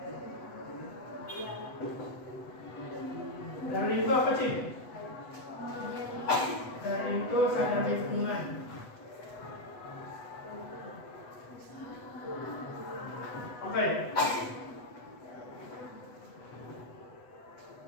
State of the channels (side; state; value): right; late; 8.1 ms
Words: Dari itu apa sih? Dari itu sadar lingkungan. Oke.